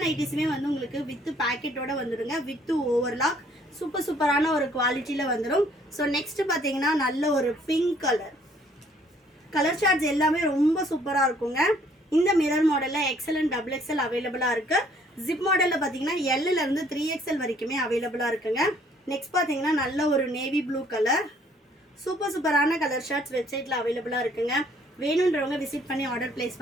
நைட்டிஸுமே வந்து உங்களுக்கு வித் பேக்கெட்டோட வந்துடுங்க, வித் ஓவர்லாக். சூப்பரான ஒரு குவாலிட்டியில் வந்துடும். ஸோ நெக்ஸ்ட் பார்த்தீங்கன்னா நல்ல ஒரு பிங்க் கலர் சார்ட்ஸ் எல்லாமே ரொம்ப சூப்பராக இருக்குங்க. இந்த மிரர் மாடலில் எக்ஸல் அண்ட் டபுள் எக்ஸல் அவைலபிளாக இருக்குது. ஜிப் மாடலில் பார்த்தீங்கன்னா எல்லிருந்து 3XL வரைக்குமே அவைலபிளாக இருக்குங்க. நெக்ஸ்ட் பார்த்தீங்கன்னா நல்ல ஒரு நேவி ப்ளூ கலர், சூப்பரான கலர் ஷார்ட்ஸ் வெப்சைட்டில் அவைலபிளாக இருக்குங்க. வேணுன்றவங்க விசிட் பண்ணி ஆர்டர் பிளேஸ்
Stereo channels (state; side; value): normal; both; correlation 0.62